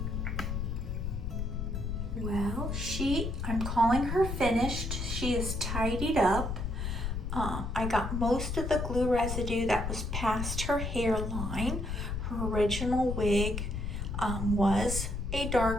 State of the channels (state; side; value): noise; left; rumble, 3 dB below the sound